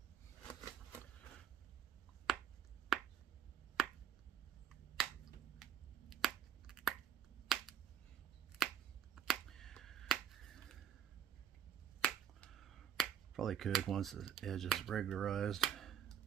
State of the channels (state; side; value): quieter; left; 9.0 dB